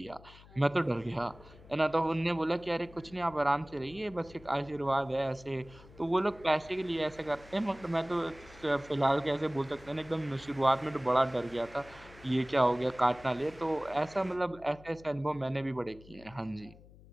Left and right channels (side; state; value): left; noise; hum, 22 dB below the sound